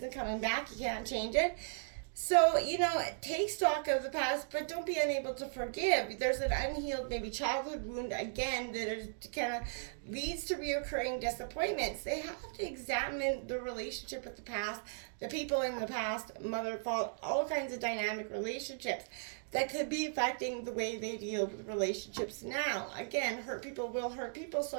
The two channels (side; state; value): left; silent; digital silence